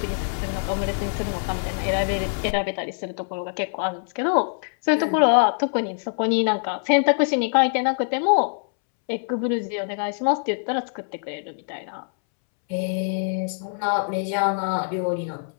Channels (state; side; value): silent; right; 63 dB below the other